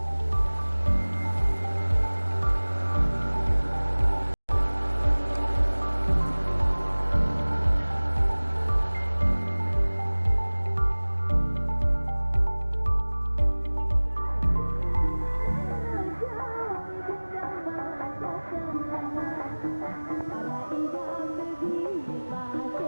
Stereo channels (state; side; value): inverted; both; correlation -1.00